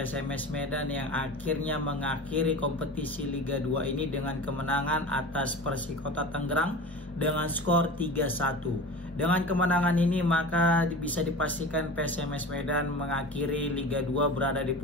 Medan yang akhirnya mengakhiri kompetisi Liga 2 ini dengan kemenangan atas Persikota Tangerang dengan skor 3-1. Dengan kemenangan ini maka bisa dipastikan PSMS Medan mengakhiri Liga 2 berada di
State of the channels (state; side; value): normal; both; correlation 0.34